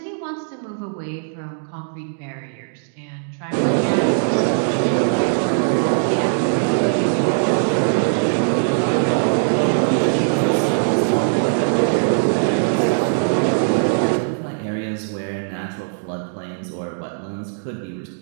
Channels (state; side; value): silent; left; digital silence